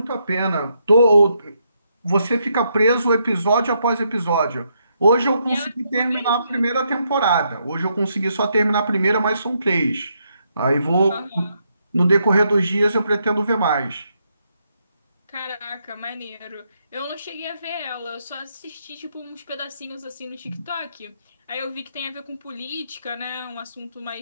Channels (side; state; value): both; inverted; correlation -0.78